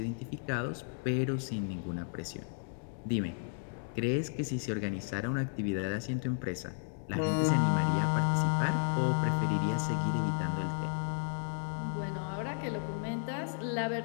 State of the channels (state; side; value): silent; right; digital silence